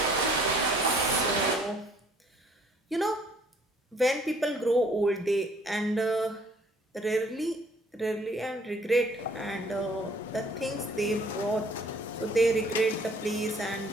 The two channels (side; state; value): both; normal; correlation 0.59